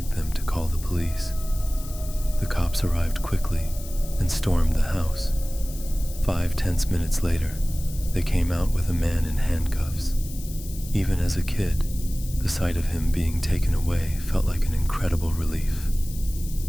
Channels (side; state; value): left; noise; hiss, 15 dB below the sound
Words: them to call the police. The cops arrived quickly and stormed the house. 5 tense minutes later, they came out with a man in handcuffs. Even as a kid, the sight of him being taken away felt like an incredible relief.